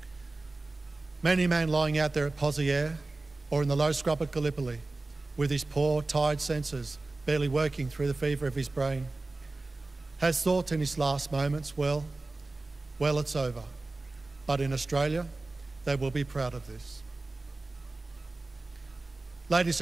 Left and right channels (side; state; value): left; quieter; 3.2 dB